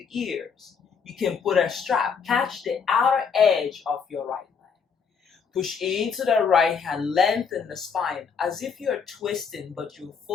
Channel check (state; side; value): quieter; right; 6.1 dB